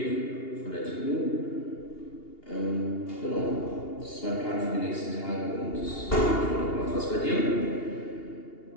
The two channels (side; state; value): right; late; 2.8 ms